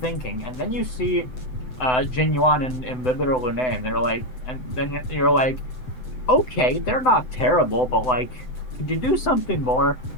And then you see Jin Yuan and Inhibitor Lune, and they're like, and then you're like, okay, they're not terrible, but like, could you do something more?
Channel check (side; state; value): right; late; 7.9 ms